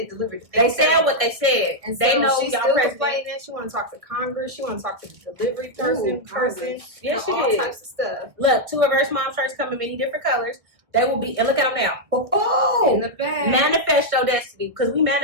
delivered it. They said what they said. And they so know she's y'all still president. complaining. She want to talk to Congress. She want to talk to the delivery person. Yes, she all did. types of stuff. Look, 2 of her mom shirts come in many different colors. They will be, and look at them now. Oh, In the back. manifest your destiny, because we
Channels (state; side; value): late; left; 1.5 ms